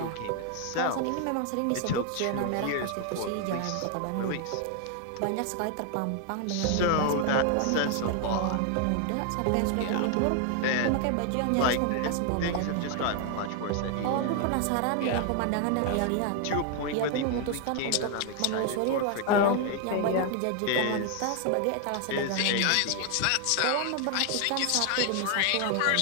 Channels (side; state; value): both; different; correlation 0.00